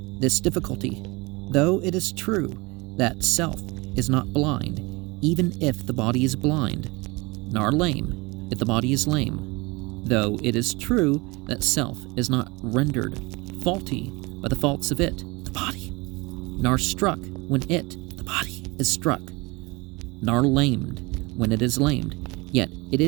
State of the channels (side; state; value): left; quieter; 24.9 dB